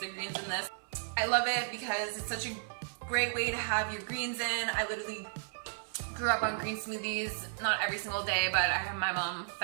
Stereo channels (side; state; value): left; silent; 55 dB below the other